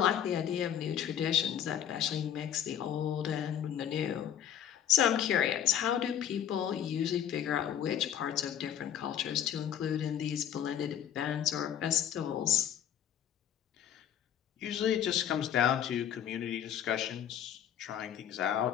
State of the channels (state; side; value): quieter; right; 9.8 dB